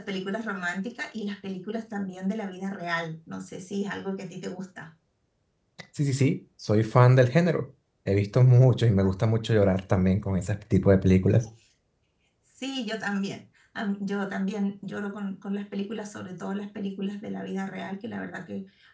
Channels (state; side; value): identical; both; correlation 1.00